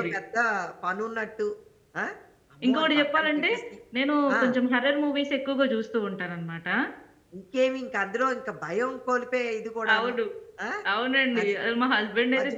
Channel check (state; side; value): identical; both; correlation 1.00